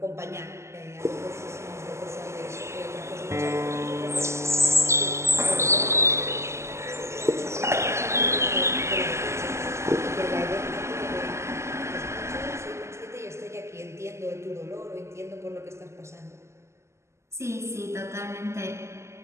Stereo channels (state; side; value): late; left; 0.13 ms